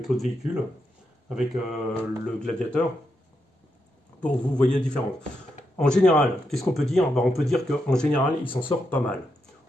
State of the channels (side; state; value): both; normal; correlation 0.83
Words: l'autre véhicule, avec le Gladiator, pour que vous voyez la différence. En général, qu'est-ce qu'on peut dire? On peut dire qu'en général, il s'en sort pas mal.